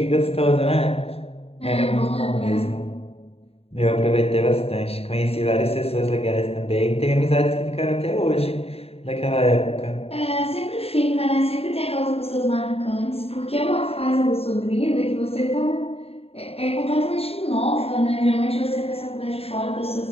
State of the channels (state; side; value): late; right; 0.29 ms